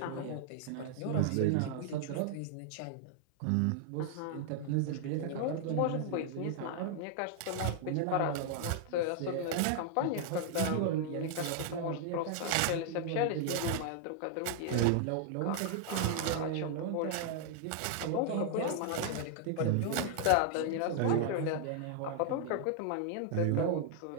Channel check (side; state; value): both; different; correlation 0.00